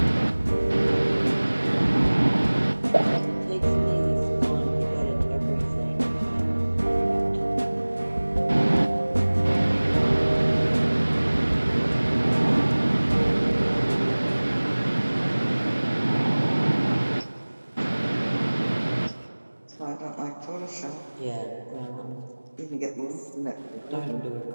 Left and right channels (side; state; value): both; inverted; correlation -1.00